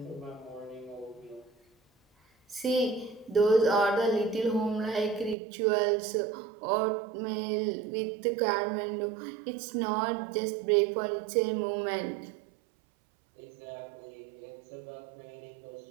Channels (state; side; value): drops out; left; at 5.4 s